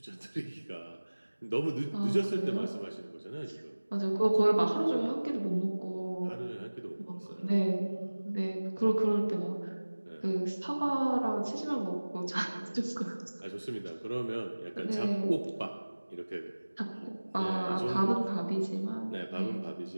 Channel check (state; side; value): inverted; both; correlation -1.00